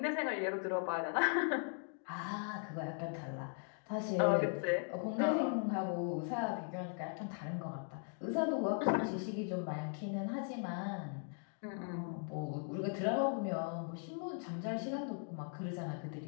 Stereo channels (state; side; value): silent; right; 52 dB below the other